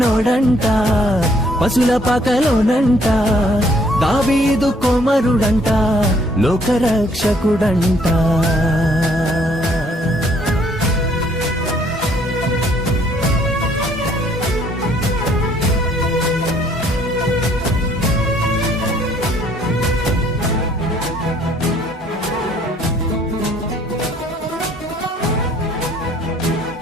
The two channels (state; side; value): normal; both; correlation 0.63